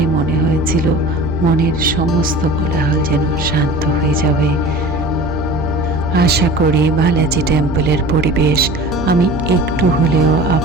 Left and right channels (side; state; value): right; noise; hum, 10 dB below the sound